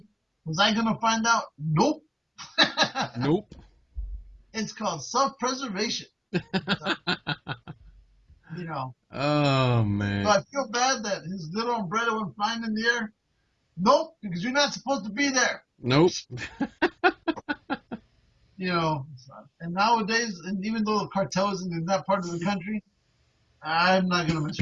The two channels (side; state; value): both; identical; correlation 1.00